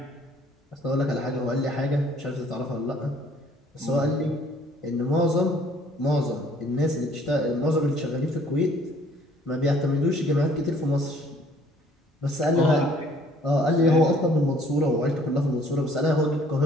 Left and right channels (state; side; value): normal; both; correlation 0.59